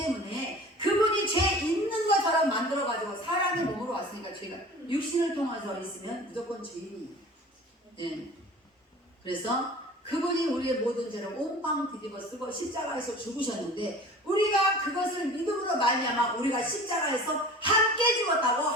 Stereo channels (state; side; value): normal; both; correlation 0.41